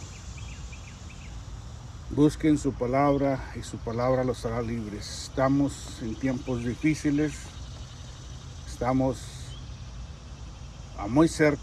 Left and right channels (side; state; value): both; identical; correlation 1.00